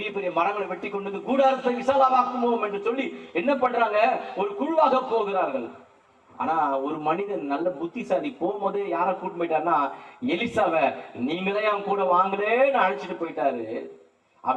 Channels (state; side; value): identical; both; correlation 1.00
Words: பெரிய மரங்களை வெட்டி கொண்டு கூடாரத்தை விசாலமாக்குவோம் என்று சொல்லி என்ன பண்றாங்க, ஒரு குழுவாக போகிறார்கள். ஆனா ஒரு மனிதன் நல்ல புத்திசாலி போகும்போது யாரை கூட்டு போயிட்டாருன்னா எலிசாவை, நீங்களே அவன் கூட வாங்கலேன்னு அழைச்சிட்டு போயிட்டாரு.